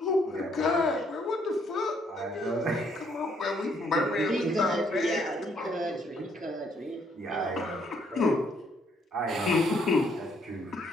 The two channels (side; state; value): both; normal; correlation 0.69